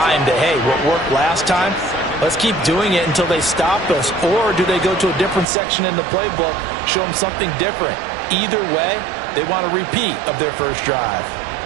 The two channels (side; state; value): left; drops out; at 5.5 s